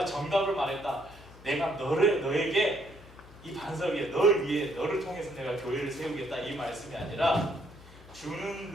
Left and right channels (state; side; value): noise; left; hum, 20 dB below the sound